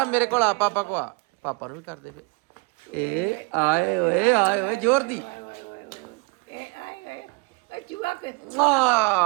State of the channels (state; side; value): quieter; left; 29.6 dB